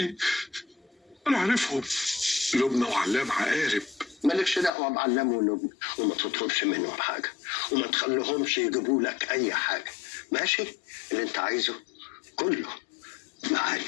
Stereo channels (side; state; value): right; drops out; at 4.7 s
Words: انا عارفهم، لبنى وعلام عقارب. مالكش دعوه بعلام ولبنى، وما تطلبش منهم حاجه، وما تخليهمش يجيبوا لك اي حاجه، ماشي؟ اللي انت عايزه كله